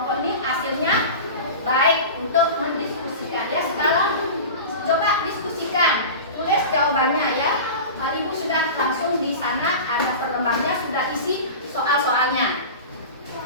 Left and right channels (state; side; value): inverted; both; correlation -0.31